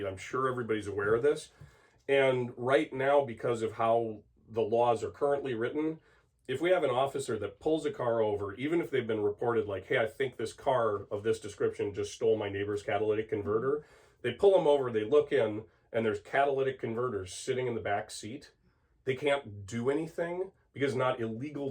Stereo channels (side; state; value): both; identical; correlation 1.00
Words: I'm sure everybody's aware of this. And right now, because of how the laws are currently written, if we have an officer that pulls a car over, even if they've been reported like, hey, I think this car of this description just stole my neighbor's catalytic converter, they pull them over, they look in, and there's catalytic converters sitting in the back seat. They can't do anything because it's not